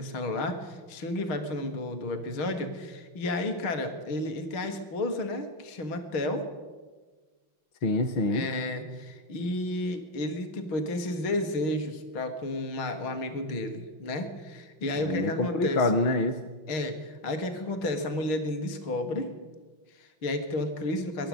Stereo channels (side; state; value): right; late; 6.4 ms